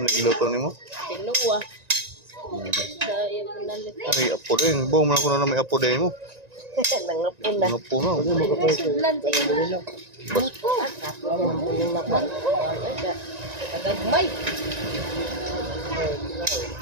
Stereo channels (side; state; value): left; late; 1.9 ms